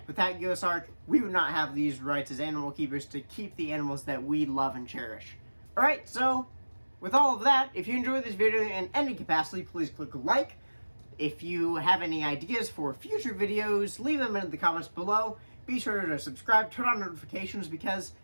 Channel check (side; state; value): both; inverted; correlation -1.00